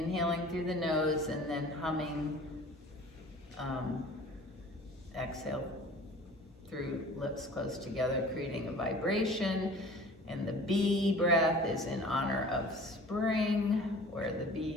through the nose and then humming, exhale through lips close together, creating a vibration. And the bee breath is in honor of spring, where the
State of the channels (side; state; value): both; normal; correlation 0.45